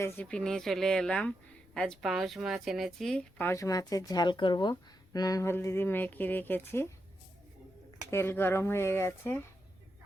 নিয়ে চলে এলাম। আজ পাউচ মাছ এনেছি। পাউচ মাছের ঝাল করব। নুন হলদি দিয়ে মেখে রেখেছি। তেল গরম হয়ে গেছে,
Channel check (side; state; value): left; noise; rumble, 29 dB below the sound